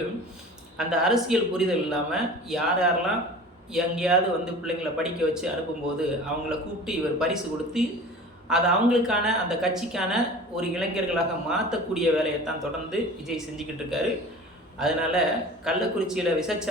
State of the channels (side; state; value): both; normal; correlation 0.40